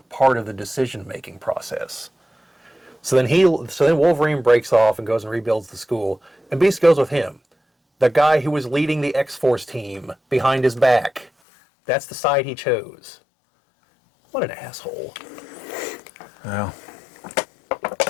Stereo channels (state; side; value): drops out; right; at 11.3 s